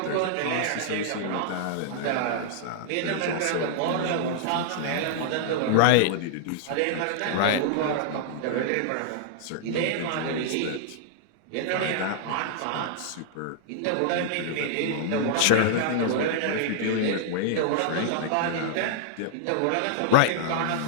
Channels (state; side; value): different; both; correlation -0.01